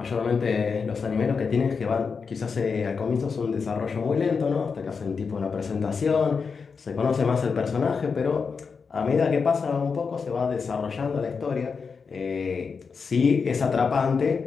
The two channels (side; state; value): right; quieter; 5.4 dB